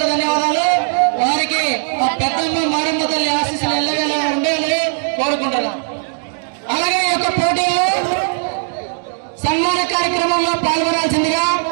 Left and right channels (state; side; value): silent; left; digital silence